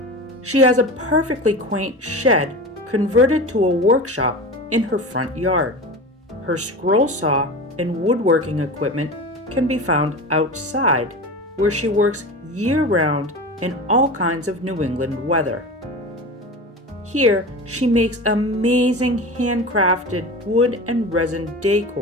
She has a perfectly quaint shed converted to a workshop in her front yard. Her scroll saw and woodworking equipment can be found outside, where she works year-round in all kinds of New England weather. Here, she makes amazing handcrafted wood and resin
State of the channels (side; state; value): both; normal; correlation 0.30